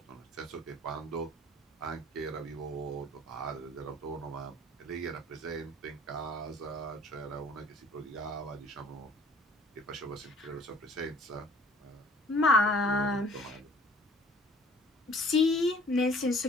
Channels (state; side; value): normal; both; correlation 0.53